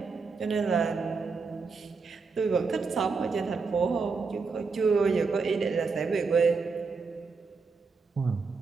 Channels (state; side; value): quieter; left; 4.7 dB